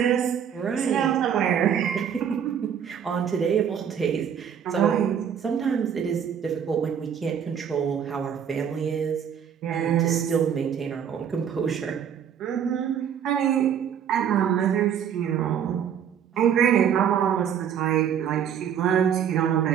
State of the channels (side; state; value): left; quieter; 8.4 dB